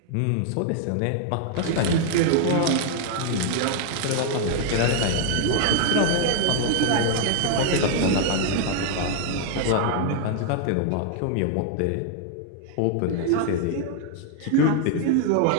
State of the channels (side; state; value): both; different; correlation 0.00